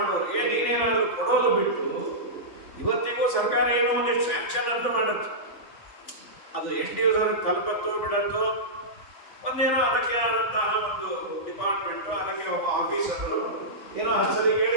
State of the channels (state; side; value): late; right; 3.4 ms